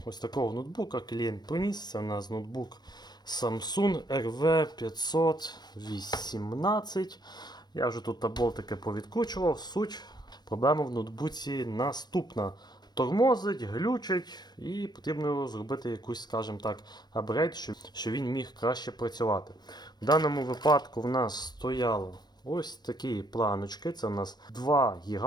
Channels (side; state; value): right; late; 0.20 ms